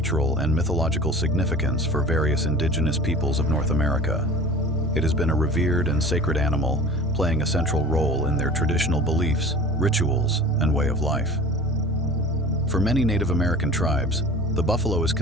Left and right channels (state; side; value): normal; both; correlation 0.41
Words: and mythological significance for various indigenous peoples of North America. It has been a revered and sacred animal, playing a central role in their traditional beliefs, rituals, and way of life. For many Native American tribes, the buffalo is